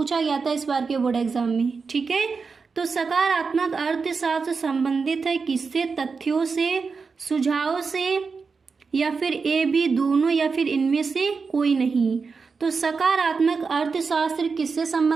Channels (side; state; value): left; quieter; 4.9 dB